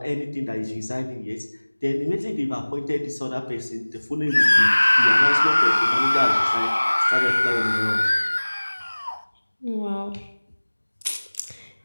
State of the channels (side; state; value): both; inverted; correlation -1.00